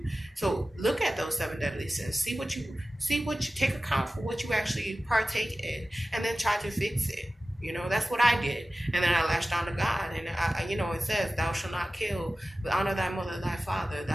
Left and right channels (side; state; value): both; normal; correlation 0.96